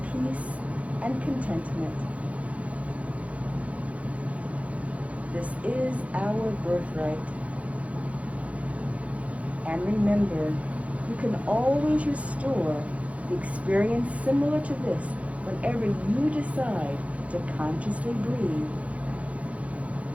peace and contentment. This is our birthright. And remember, you can always restore the experience similar to this whenever you decide to consciously breathe.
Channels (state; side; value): late; left; 0.065 ms